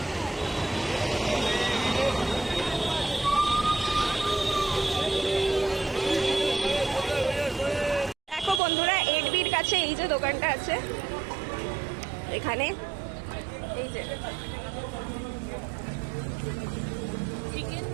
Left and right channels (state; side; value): drops out; left; at 8.6 s